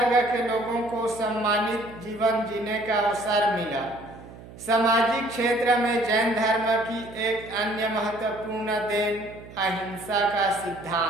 के लोगों को सम्मानित जीवन जीने का अवसर मिला। सामाजिक क्षेत्र में जैन धर्म की एक अन्य महत्वपूर्ण देन अहिंसा का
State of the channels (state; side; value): noise; right; hum, 17 dB below the sound